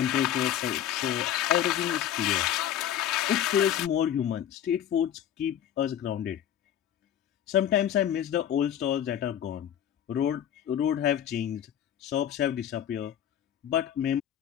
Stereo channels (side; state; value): right; quieter; 10.4 dB